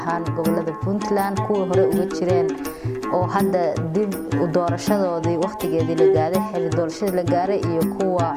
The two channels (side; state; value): both; identical; correlation 1.00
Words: ahaan gobolada Puntland kuwa hore uga jireen oo hadda dib u doorashadoodii waqtigeedii la gaaray xilli doorashada la gaaray iyo kuwa